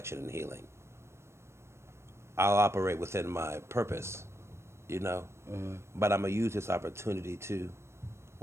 and healing. I'll operate within my purpose, but I'm going to use this opportunity to,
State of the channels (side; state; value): left; late; 0.13 ms